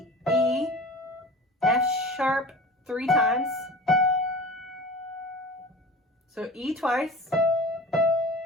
E, F sharp 3 times. So E twice,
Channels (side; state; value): both; normal; correlation 0.37